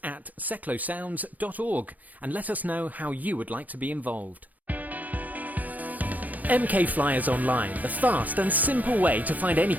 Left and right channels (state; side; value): late; left; 0.079 ms